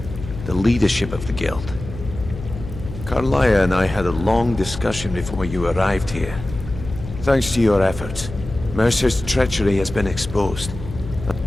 The leadership of the Guild. Carlia and I had a long discussion before you arrived here. Thanks to your efforts, Mercer's treachery has been exposed.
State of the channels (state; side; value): noise; left; hum, 11 dB below the sound